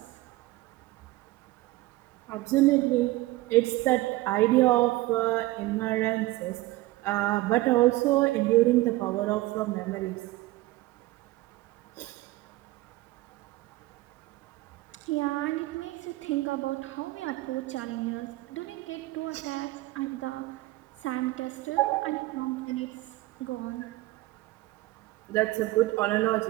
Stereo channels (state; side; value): quieter; left; 18.8 dB